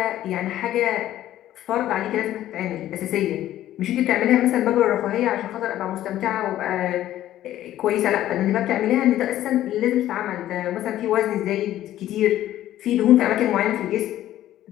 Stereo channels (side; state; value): right; quieter; 13.2 dB